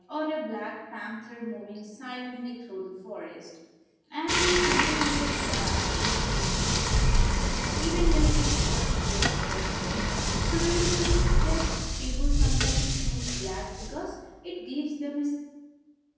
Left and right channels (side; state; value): both; identical; correlation 1.00